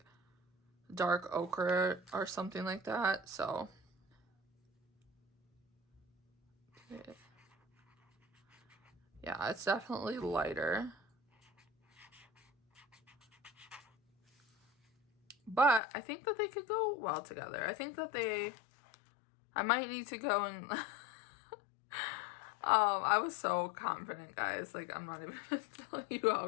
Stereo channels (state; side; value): drops out; right; at 15.8 s